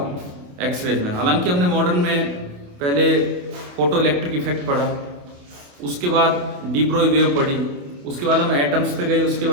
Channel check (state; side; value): late; left; 28 ms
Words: एक्सरेज में। हालांकि हमने मॉडर्न में पहले फोटो इलेक्ट्रिक इफेक्ट पढ़ा, उसके बाद डी ब्रोई वेव पढ़ी, उसके बाद हम एटम्स पे गए, उसके